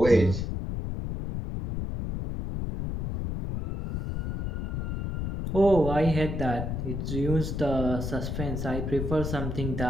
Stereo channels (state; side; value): noise; left; rumble, 3 dB below the sound